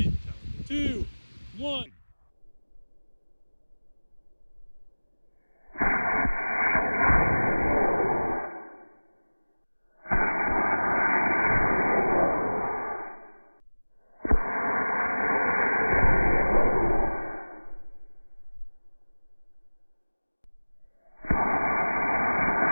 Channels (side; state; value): both; inverted; correlation -1.00